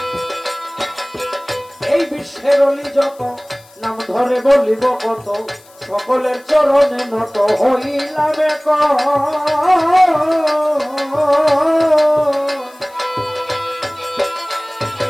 এই বিশ্বের অলি যত, নাম ধরে বলিব কত, সকলের চরণে নত হইলাম এক।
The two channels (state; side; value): noise; left; hiss, 27 dB below the sound